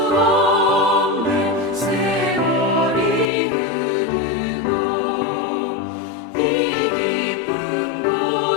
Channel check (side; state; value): right; drops out; at 3.2 s